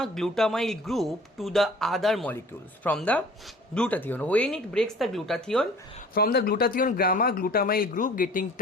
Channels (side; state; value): both; normal; correlation 0.48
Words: group to the other molecules from the glutathione. When it breaks the glutathione, from the glutathione, gamma-glutamyl group getting